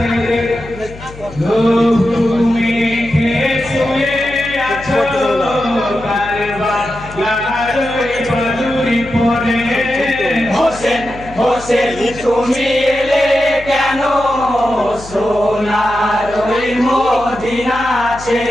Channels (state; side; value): noise; left; hum, 17 dB below the sound